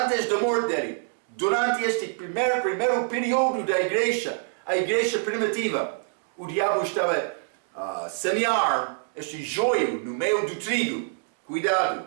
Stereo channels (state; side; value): silent; left; digital silence